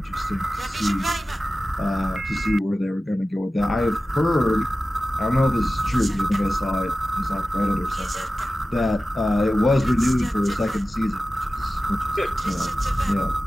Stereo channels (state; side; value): normal; both; correlation 0.95